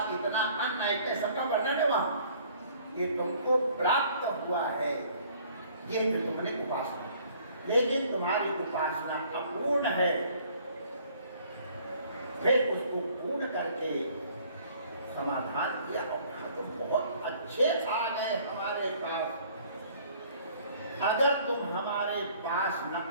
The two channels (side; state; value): both; inverted; correlation -0.57